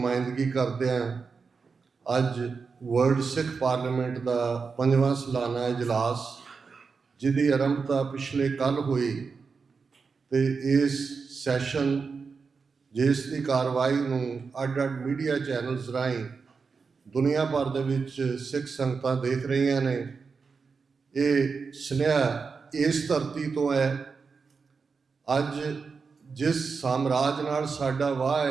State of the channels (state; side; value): quieter; left; 5.1 dB